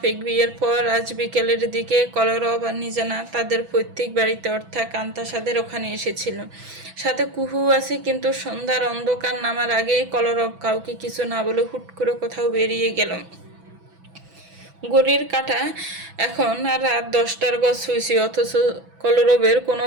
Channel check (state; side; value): late; left; 6.0 ms